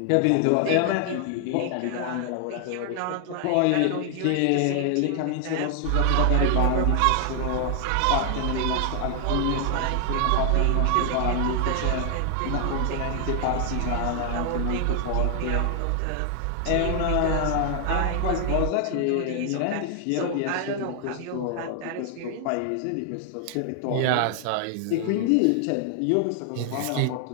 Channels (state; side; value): different; both; correlation 0.00